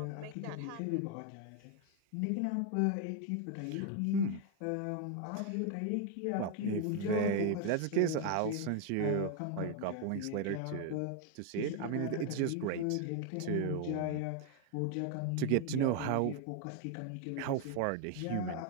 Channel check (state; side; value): different; both; correlation 0.01